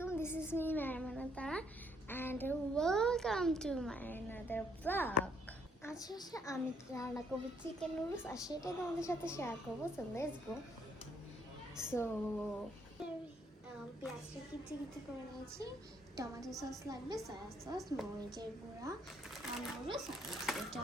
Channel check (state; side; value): normal; both; correlation 0.69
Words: This is me, Marimanata, and welcome to my another vlog. আজকে আমি রান্না করবো chicken noodles আর সেটাই তোমাদের সাথে শেয়ার করবো। So let's go. সো পেঁয়াজটা কিচি করে নিয়েছি, টমেটো সস লাগবে, সয়া সস, মরিচের গুঁড়া আর নুডলস এটা